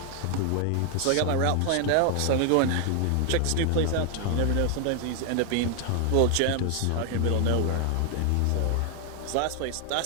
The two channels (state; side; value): different; both; correlation 0.00